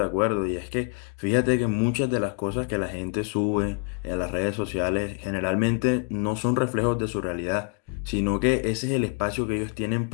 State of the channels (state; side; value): quieter; right; 36.2 dB